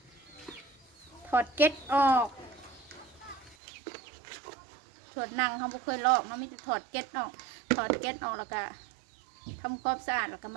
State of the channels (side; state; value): left; drops out; at 3.6 s